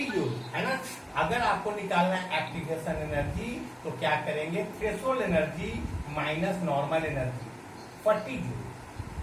जूल, है ना? अगर आपको निकालना है एक्टिवेशन एनर्जी तो क्या करेंगे? Threshold energy minus normal energy, 40 joule.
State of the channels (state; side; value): identical; both; correlation 1.00